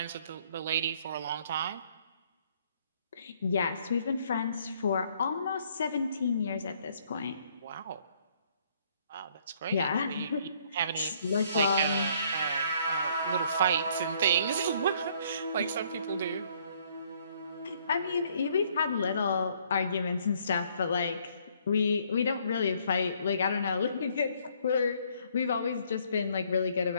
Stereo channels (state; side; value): inverted; both; correlation -0.65